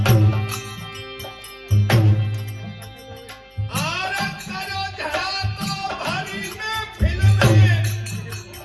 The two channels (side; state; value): both; identical; correlation 1.00